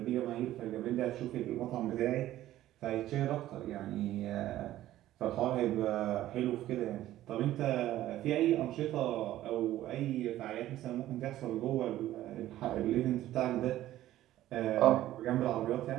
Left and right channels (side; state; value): left; quieter; 14.1 dB